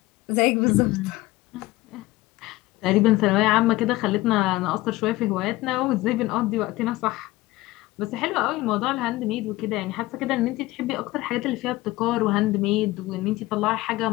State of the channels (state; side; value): quieter; right; 18.9 dB